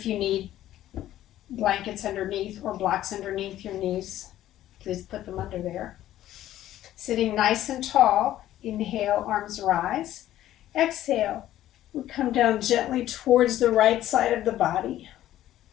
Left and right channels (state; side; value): quieter; right; 13.3 dB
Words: you need blankets underneath or blocks underneath your knees, please put them under there. Sitting nice and tall. Inhale, arms rise. Exhale, we come down gently towards the right side of the body.